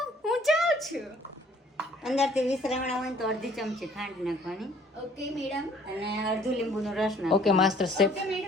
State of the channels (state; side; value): normal; both; correlation 0.58